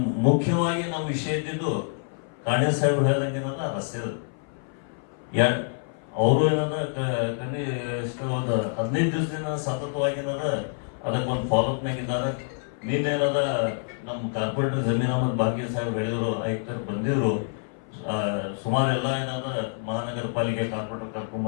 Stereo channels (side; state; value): right; silent; 58 dB below the other